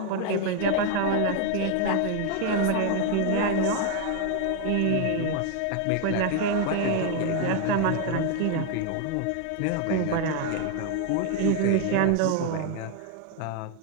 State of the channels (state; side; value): different; both; correlation 0.01